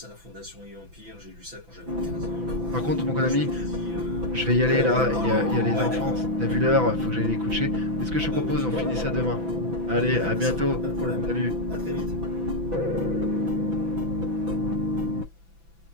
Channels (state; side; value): late; left; 6.0 ms